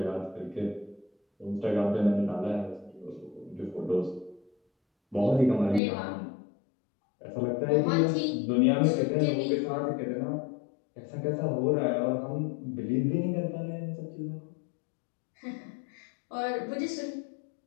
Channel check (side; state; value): right; drops out; at 5.8 s